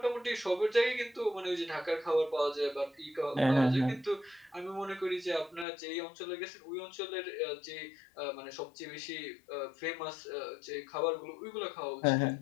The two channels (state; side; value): drops out; right; at 5.7 s